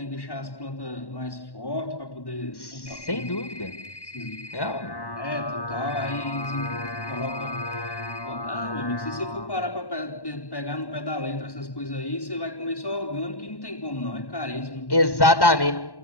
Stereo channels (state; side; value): late; right; 1.1 ms